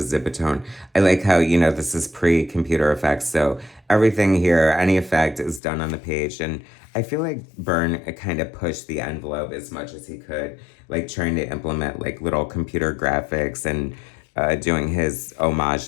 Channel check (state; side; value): drops out; right; at 5.6 s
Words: I like how, this is pre-computer effects, so everything here, any effect is done on the page, and I feel like Byrne kind of pushed the envelope as much as he could, like trying to implement like little computer graphics and doing his